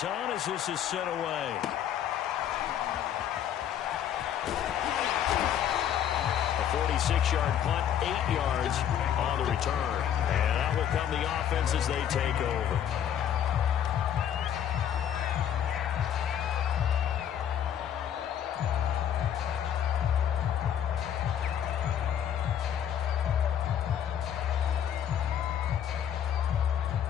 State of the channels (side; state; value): right; quieter; 9.5 dB